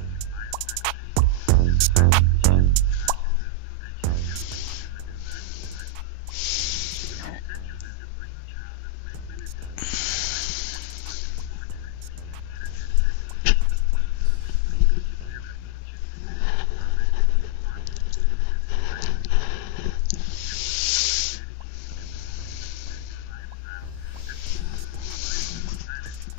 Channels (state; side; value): different; both; correlation 0.00